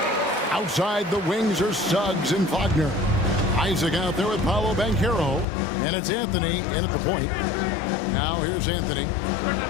Outside the wings are Suggs and Wagner. Isaac out there with Paolo Banchero. And it's Anthony in at the point. Now here's Anthony.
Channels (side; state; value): right; drops out; at 5.5 s